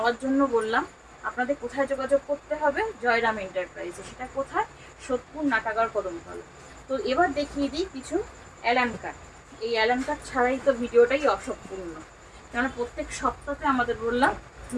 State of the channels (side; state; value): both; identical; correlation 1.00